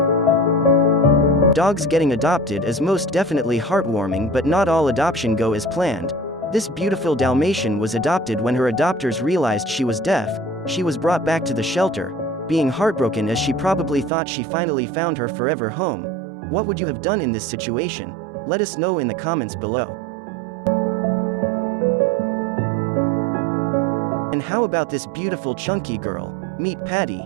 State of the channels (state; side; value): drops out; left; at 14.1 s